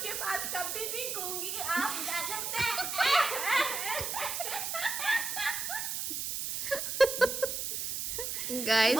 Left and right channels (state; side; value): noise; right; hiss, 2 dB below the sound